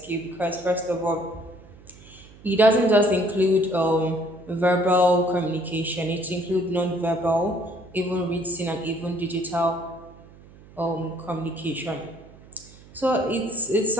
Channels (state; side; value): noise; right; hum, 22 dB below the sound